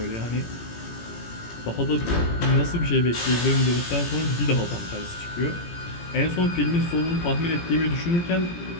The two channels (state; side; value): late; right; 17 ms